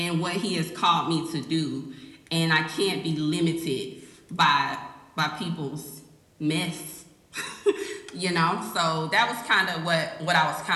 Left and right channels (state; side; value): identical; both; correlation 1.00